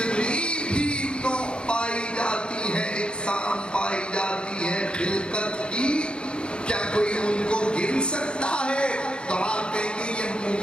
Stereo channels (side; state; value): right; late; 0.054 ms